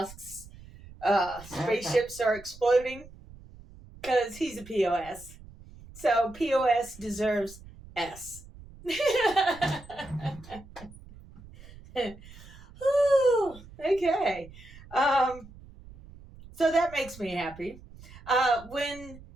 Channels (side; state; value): right; noise; rumble, 19 dB below the sound